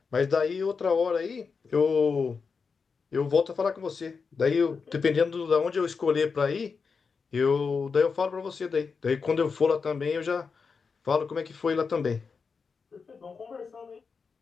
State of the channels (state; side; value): quieter; right; 5.2 dB